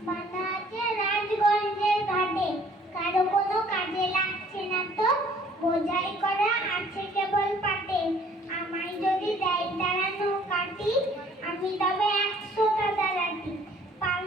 বাঁধা আছে রাজগঞ্জের ঘাটে, কারো কোনো কাজে লাগছে না তো, বোঝাই করা আছে কেবল পাটে। আমায় যদি দেয় তারা নৌকাটি, আমি তবে 100টা দাঁড়াটি। পাল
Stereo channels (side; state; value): both; normal; correlation 0.57